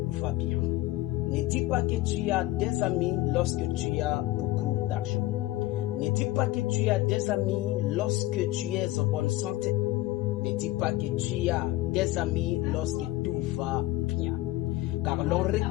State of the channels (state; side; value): quieter; right; 17.2 dB